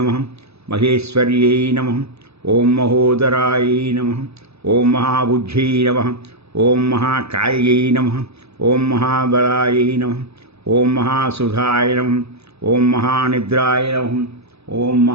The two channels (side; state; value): left; late; 0.79 ms